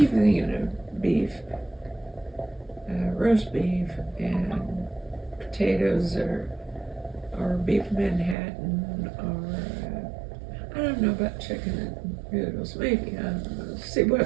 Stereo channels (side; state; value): left; drops out; at 8.3 s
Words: thinking of beef, roast beef, and potatoes, or beef Manhattan, or I don't know about chicken and noodles. Maybe I don't know. See